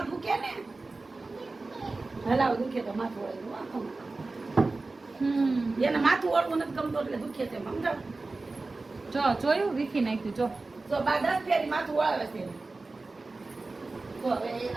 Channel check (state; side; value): quieter; left; 3.5 dB